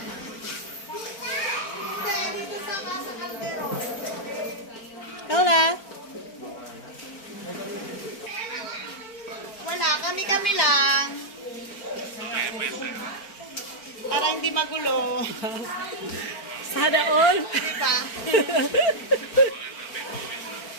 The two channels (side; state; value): right; late; 4.4 ms